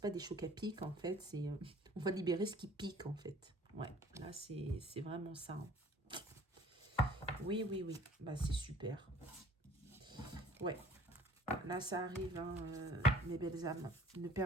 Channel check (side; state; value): both; normal; correlation 0.52